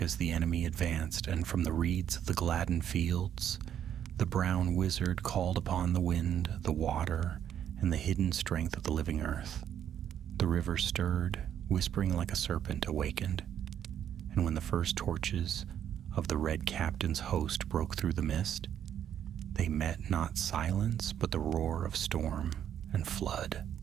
as the enemy advanced, and from the reeds of the Gladden fields, the brown wizard called upon the wind, the water, and the hidden strength of the living earth. The river stirred, whispering like a serpent awakened, and when the first torches of the Red Captain's host broke through the mist, they met not silence but the roar of storm and flood.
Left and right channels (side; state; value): left; quieter; 9.7 dB